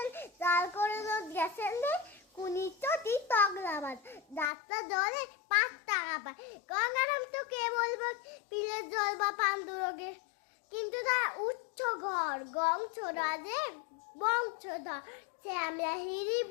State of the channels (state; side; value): drops out; right; at 4.5 s